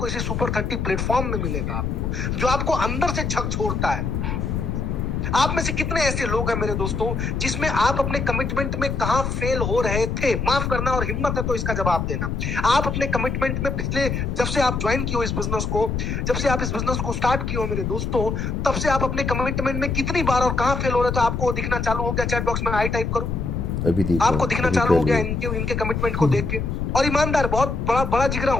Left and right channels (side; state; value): left; noise; rumble, 2 dB below the sound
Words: इसी सुपर 30 प्लेटफॉर्म में मिलेगा आपको, जो आपको अंदर से झकझोरता है। आप में से कितने ऐसे लोग हैं मेरे दोस्तों, जिसमें आप अपने कमिटमेंट में कहां फेल हो रहे थे? माफ करना, और हिम्मत है तो इसका जवाब देना। आप अपने कमिटमेंट में पिछले, जब से आप ज्वाइन किए हो इस बिजनेस को, जब से आप इस बिजनेस को स्टार्ट किए हो मेरे दोस्तों, तब से आप अपने कमिटमेंट में कितनी बार और कहां फेल हो रहे थे आपको दिखना चालू हो गया? चैट बॉक्स में आई टाइप करो, अभी आपको दिखना चालू हो गया इनके कमिटमेंट को देख के। और ईमानदार, बहुत बड़ा जिगरा